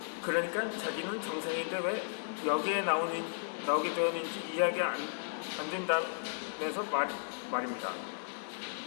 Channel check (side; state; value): right; silent; 55 dB below the other